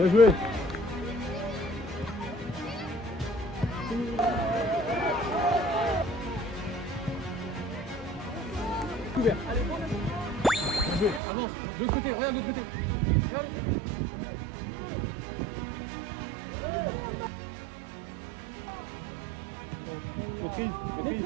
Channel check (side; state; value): left; drops out; at 11.2 s